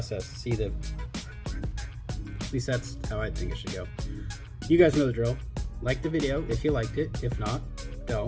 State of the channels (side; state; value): both; identical; correlation 1.00